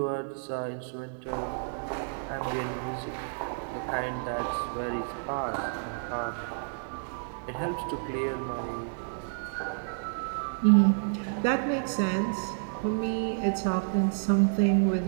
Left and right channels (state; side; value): silent; left; digital silence